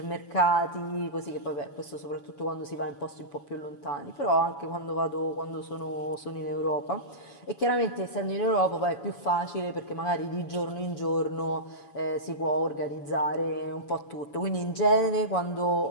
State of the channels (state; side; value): late; right; 7.1 ms